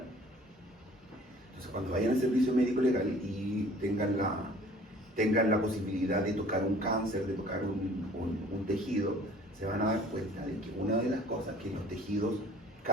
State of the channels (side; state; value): both; normal; correlation 0.51